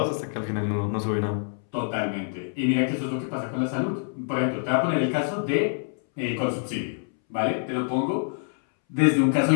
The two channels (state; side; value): silent; right; 61 dB below the other